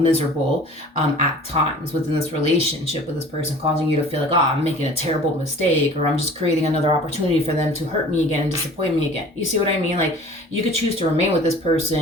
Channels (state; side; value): normal; both; correlation 0.45